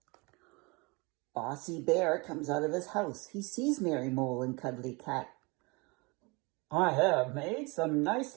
Bossy Bear comes out of his house. He sees Mary Mole and Cuddly Cat. "I have made some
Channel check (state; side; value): quieter; left; 27.7 dB